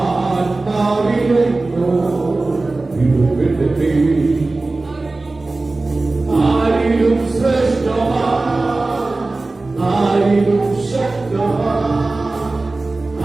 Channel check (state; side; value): quieter; left; 3.3 dB